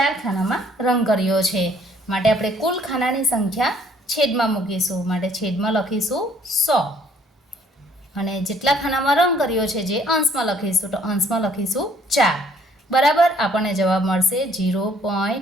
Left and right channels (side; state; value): both; normal; correlation 0.62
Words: ખાનામાં રંગ કર્યો છે માટે આપણે કુલ ખાનાની સંખ્યા છેદમાં મૂકીશું માટે છેદમાં લખીશું 100 અને જેટલા ખાનામાં રંગ કર્યો છે જે અંશમાં લખીશું તો અંશમાં લખીશું 4 બરાબર આપણને જવાબ મળશે